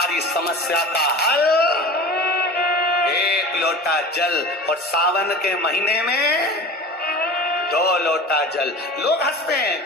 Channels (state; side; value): normal; both; correlation 0.35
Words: समस्या का हल 1 लोटा जल। और सावन के महीने में 2 लोटा जल। लोग हंसते